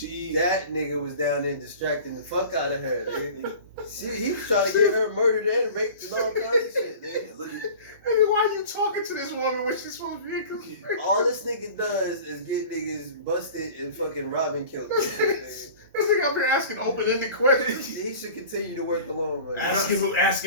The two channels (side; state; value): both; inverted; correlation -0.41